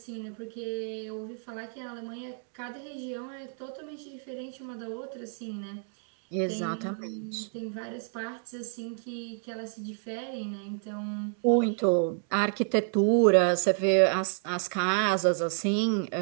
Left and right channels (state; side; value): silent; left; 58 dB below the other